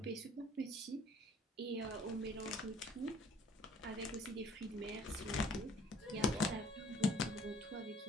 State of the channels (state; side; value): normal; both; correlation 0.55